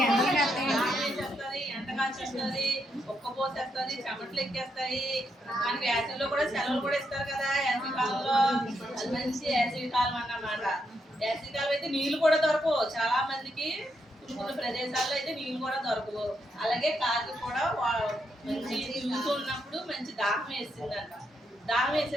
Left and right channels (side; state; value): both; normal; correlation 0.80